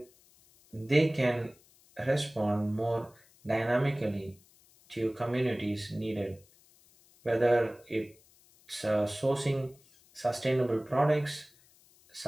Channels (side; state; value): left; noise; hiss, 29 dB below the sound